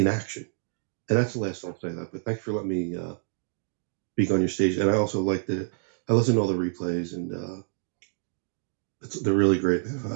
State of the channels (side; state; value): left; silent; 60 dB below the other